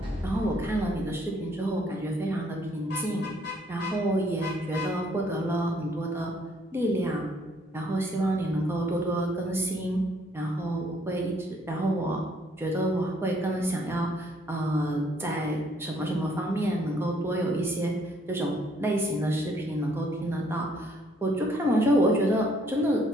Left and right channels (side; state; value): both; normal; correlation 0.65